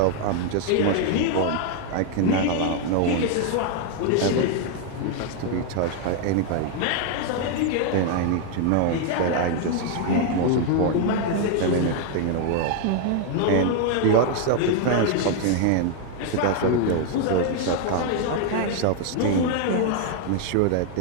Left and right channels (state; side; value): different; both; correlation 0.00